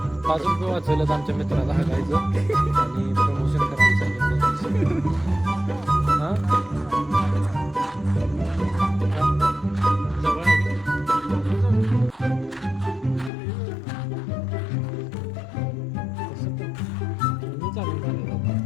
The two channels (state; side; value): drops out; right; at 13.3 s